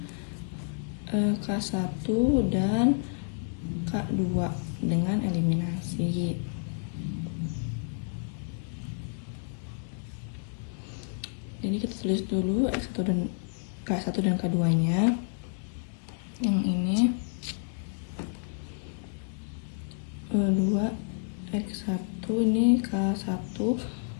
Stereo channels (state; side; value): silent; right; digital silence